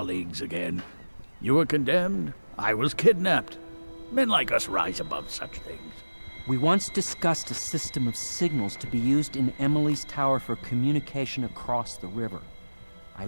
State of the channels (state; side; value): inverted; both; correlation -1.00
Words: again. You were condemned. I was kidnapped. Men like us rise above such things. We once discussed a system of signals to be used in Emily's tower for communication across the river. I